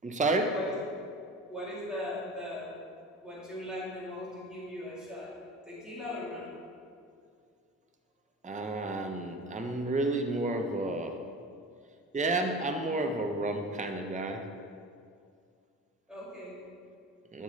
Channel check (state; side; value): normal; both; correlation 0.35